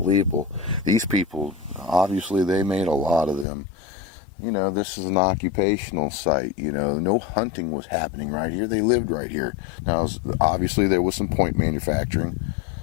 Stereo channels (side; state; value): right; drops out; at 3.5 s